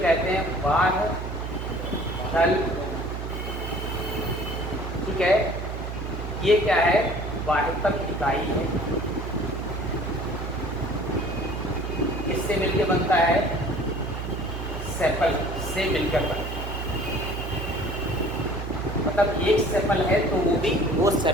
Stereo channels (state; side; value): noise; right; hum, 6 dB below the sound